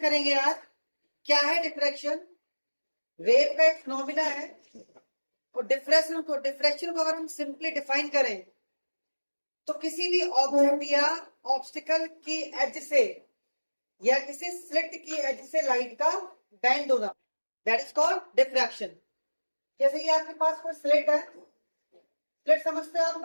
करेंगे आज। क्या है डिफ्रैक्शन? वेव का एक फिनोमिना है। और डिफ्रैक्शन को अगर हम सिंपली डिफाइन करें तो किसी भी ऑब्जेक्ट या ऑब्स्टिकल की एज से या किसी स्लिट की एज से लाइट का बेंड होना, दैट इज कॉल्ड डिफ्रैक्शन। जैसे कि आपके पास कोई स्लिट है, स्लिट समझते हैं आप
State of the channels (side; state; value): both; inverted; correlation -1.00